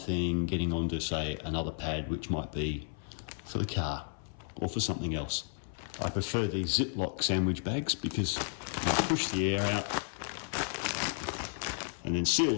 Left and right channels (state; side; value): silent; right; 56 dB below the other